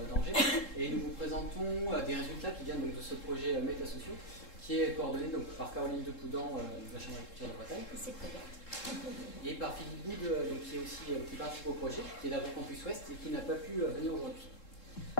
d'Angers, et nous vous présentons des résultats qui viennent donc, de ce projet Métasociaux, qui est coordonné donc, par Caroline Depoudan de la Chambre d'agriculture de Bretagne. C'est très bien. Et par Philippe Boud, donc, qui participe au projet, qui est d'AgroCampus Ouest et qui n'a pas pu venir aujourd'hui.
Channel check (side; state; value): right; late; 3.7 ms